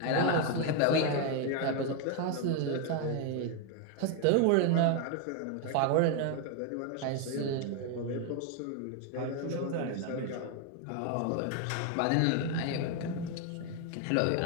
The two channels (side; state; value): both; different; correlation 0.01